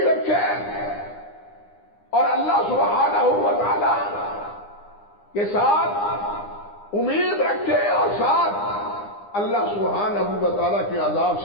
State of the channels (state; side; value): late; right; 9.8 ms